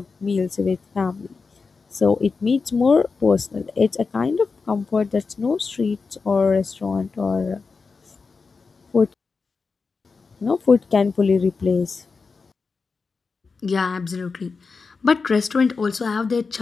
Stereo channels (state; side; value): quieter; right; 4.7 dB